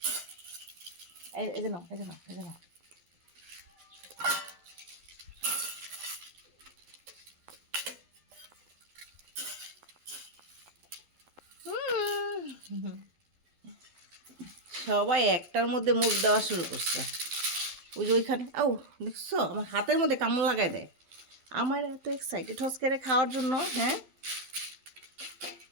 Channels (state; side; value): late; left; 12 ms